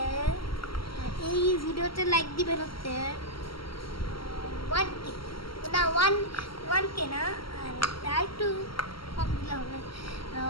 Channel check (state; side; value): late; right; 0.74 ms